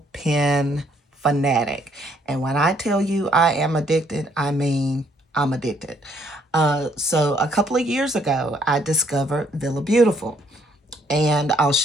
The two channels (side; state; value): both; normal; correlation 0.67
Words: Pen fanatic. And when I tell you I am addicted, I mean I'm addicted. So a couple of years ago, I discovered Villabeautifful. And I'll